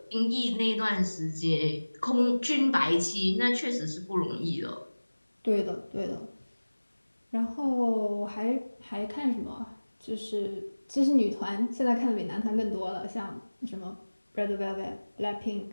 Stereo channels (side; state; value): both; inverted; correlation -1.00